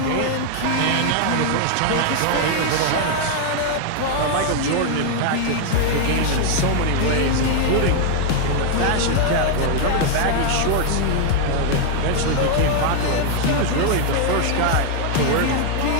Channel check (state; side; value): different; both; correlation 0.00